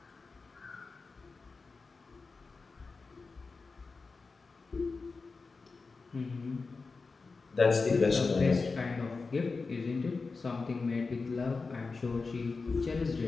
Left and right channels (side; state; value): right; quieter; 4.2 dB